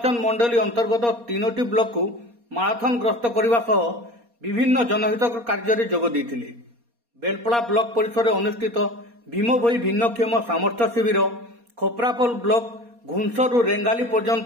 मंडली अंतर्गत 3टी ब्लॉक को माराथन ग्रस्त करने सह विभिन्न जनहित कार्य जोग देथिले। बेलपड़ा ब्लॉक परिसर में अनुष्ठित भीमभोई भिन्नक्षम सामर्थ्य शिविर, खोपरापोल ब्लॉक घुंसरू रेंगाली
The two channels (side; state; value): left; late; 4.2 ms